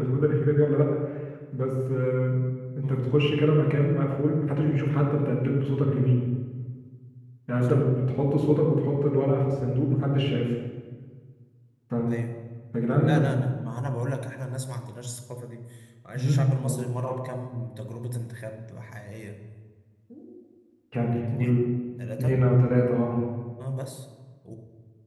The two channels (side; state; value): both; identical; correlation 1.00